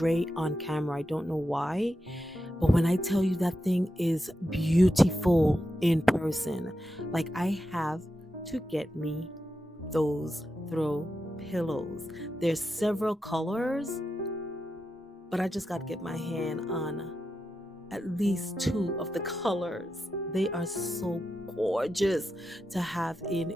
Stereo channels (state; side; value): normal; both; correlation 0.88